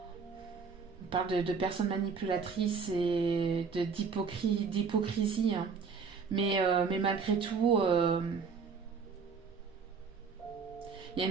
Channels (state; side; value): quieter; left; 5.5 dB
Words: On parle de personnes manipulatrices et d'hypocrisie, hein. Mais malgré tout, il y a